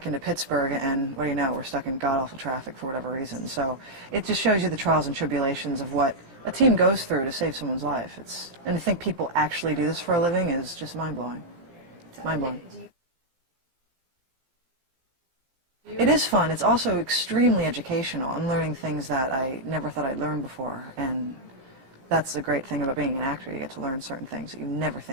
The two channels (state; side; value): late; left; 17 ms